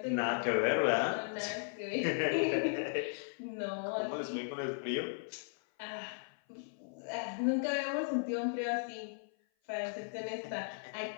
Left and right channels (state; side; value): silent; right; 54 dB below the other